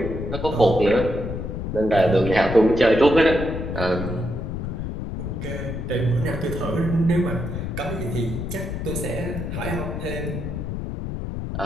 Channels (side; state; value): left; noise; rumble, 5 dB below the sound